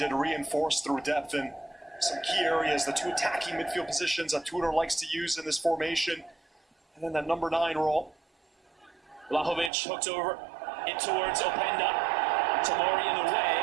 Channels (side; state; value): left; drops out; at 9.7 s